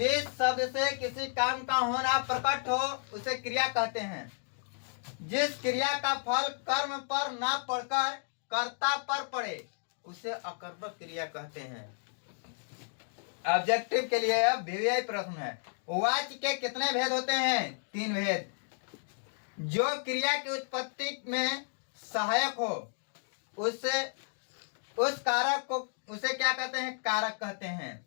शब्द से किसी काम का होना प्रकट हो उसे क्रिया कहते हैं। जिस क्रिया का फल कर्म पर न पड़कर कर्ता पर पड़े उसे अकर्मक क्रिया कहते हैं। ऑब्जेक्टिव के लिए अब VVI प्रश्न है। वाच्य के कितने भेद होते हैं? 3 भेद। जो क्रिया की उत्पत्ति में सहायक हो उससे उस कारक को उसे क्या कहते हैं? कारक कहते हैं।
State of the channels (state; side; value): silent; right; digital silence